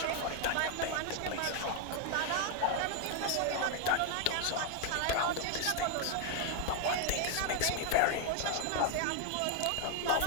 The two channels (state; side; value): different; both; correlation 0.00